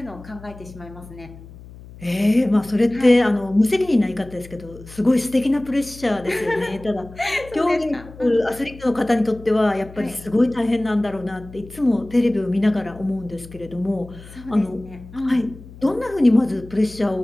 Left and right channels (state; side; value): noise; left; hum, 18 dB below the sound